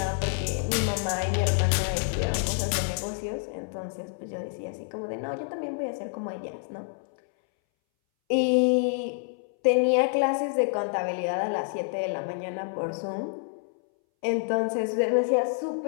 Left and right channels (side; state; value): right; silent; 60 dB below the other